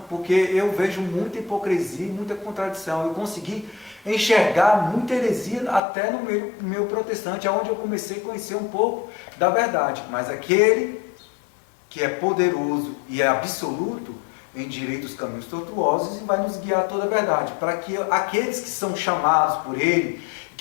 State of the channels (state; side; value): drops out; right; at 5.8 s